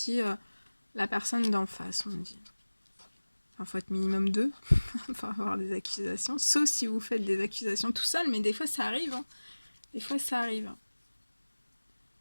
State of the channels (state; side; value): inverted; both; correlation -1.00